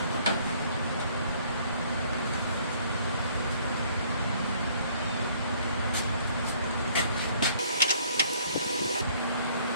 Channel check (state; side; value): inverted; both; correlation -0.60